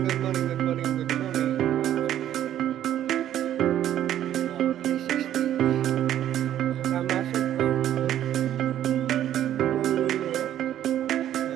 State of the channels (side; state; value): left; quieter; 11.5 dB